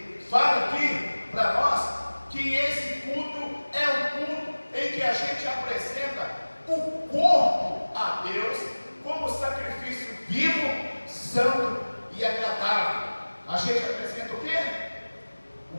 fala aqui para nós que esse culto é um culto em que a gente apresenta o corpo a Deus como sacrifício vivo, santo e agradável. A gente apresenta o quê?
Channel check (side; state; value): both; inverted; correlation -1.00